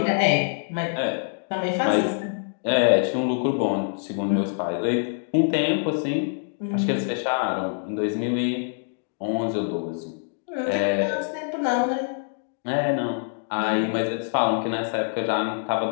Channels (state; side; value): silent; right; digital silence